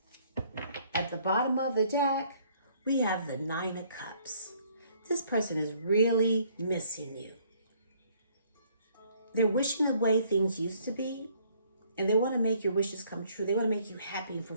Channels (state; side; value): inverted; both; correlation -0.62